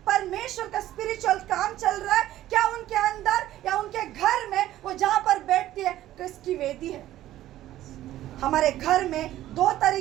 परमेश्वर का स्पिरिचुअल काम चल रहा है, क्या उनके अंदर या उनके घर में वो जहां पर बैठती है किसकी वेदी है। हमारे घर में दो तरह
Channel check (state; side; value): quieter; left; 13.9 dB